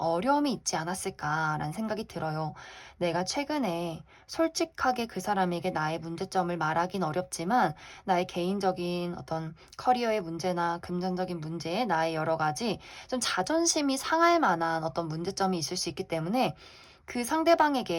있지 않았을까라는 생각이 들어요. 내가 최근에 솔직하게 그 사람에게 나의 문제점을 말하긴 어렵지만 나의 개인적인 어떤 커리어의 문제나 금전적인 문제, 나의 여러 가지 좀 자존심이 상할 만한 어떤 문제점이 있을 수 있기 때문에 그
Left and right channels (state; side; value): identical; both; correlation 1.00